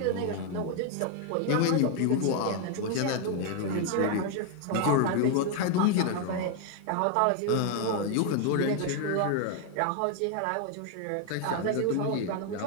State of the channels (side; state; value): both; different; correlation 0.01